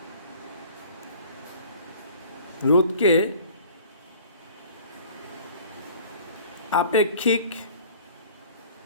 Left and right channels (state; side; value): inverted; both; correlation -0.49